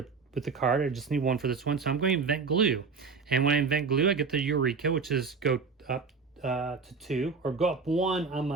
the card. I just need one for this one. So I'm going to invent glue. And when I invent glue, I get the Eureka, which is go up to 2, or go up 1 on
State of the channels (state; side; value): quieter; left; 5.0 dB